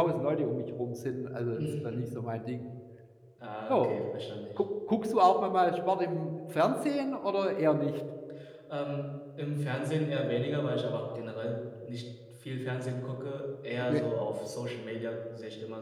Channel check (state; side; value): identical; both; correlation 1.00